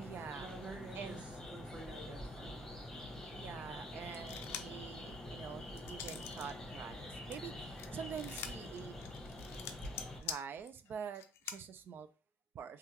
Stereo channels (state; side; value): normal; both; correlation 0.55